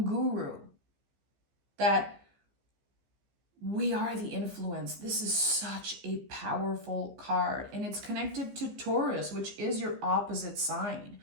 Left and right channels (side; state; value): left; late; 15 ms